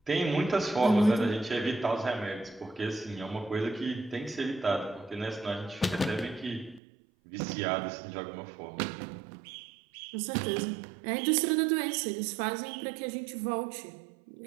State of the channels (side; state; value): left; drops out; at 6.8 s